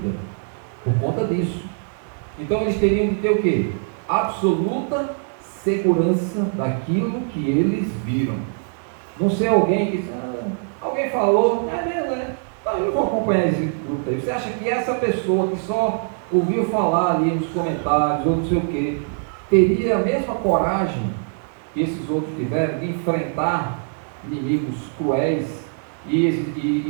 por conta disso. Então eles teriam de ter o quê? Absoluta segurança daquilo que eles viram. Não ser alguém que alguém falou, não é mesmo, né? Então eu vou acompanhar esse grupo aí. Você acha que essa pessoa que só ouviu falar ali nos comentários ou não sei o quê, teria a mesma coragem que esses outros tiveram de enfrentar inimigos cruéis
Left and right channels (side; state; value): left; silent; 64 dB below the other